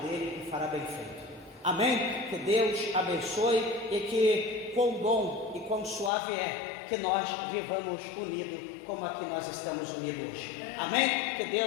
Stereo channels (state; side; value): drops out; right; at 6.1 s